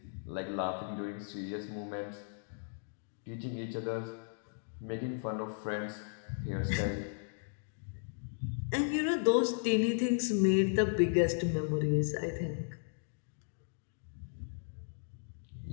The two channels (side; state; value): right; silent; digital silence